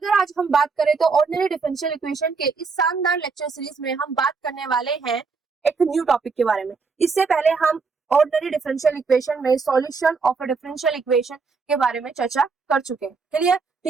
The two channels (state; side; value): quieter; left; 4.7 dB